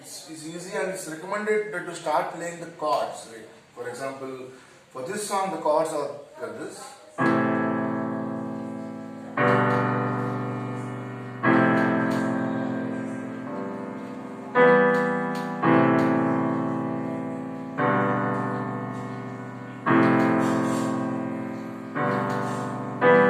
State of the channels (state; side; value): identical; both; correlation 1.00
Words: easy, and it's recommended to start playing the chords, right? For example, for this song the chords are like this.